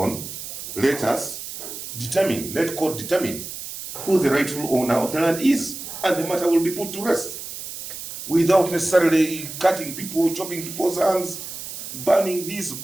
Let us determine, let court determine who the rightful owner of the land is, and the matter will be put to rest without necessarily cutting people, chopping people's hands, burning this,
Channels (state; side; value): noise; right; hiss, 9 dB below the sound